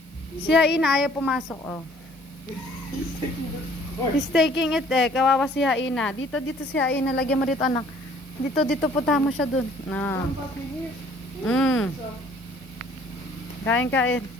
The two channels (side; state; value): right; noise; hiss, 30 dB below the sound